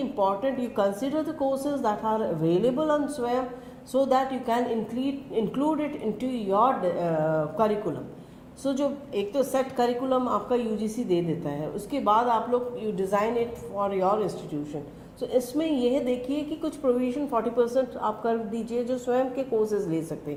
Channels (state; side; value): identical; both; correlation 1.00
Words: important you consider the courses that are available on SWAYAM so that you can include it into your curriculum. So जो एक तो set curriculum आपका UGC दे देता है, उसके बाद आप लोग you design it for your institution. So इसमें यह देखिए कि कुछ provision 40% आप कर दीजिए जो स्वयं के courses ले सकते हैं.